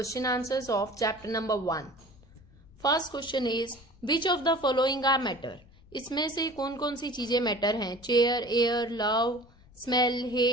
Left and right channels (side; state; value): left; noise; rumble, 26 dB below the sound